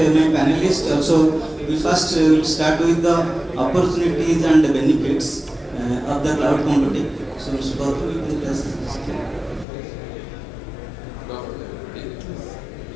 panelists. Also, we first will start with the opportunities and the benefits of the cloud computing. So Mr. Gautam, you can just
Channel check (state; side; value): drops out; right; at 9.7 s